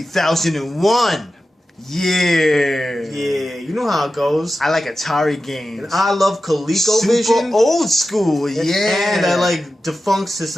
Yeah. Yeah, you know how it goes. I like Atari games. And I love ColecoVision. Super old school, yeah. And I like defunct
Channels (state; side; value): normal; both; correlation 0.93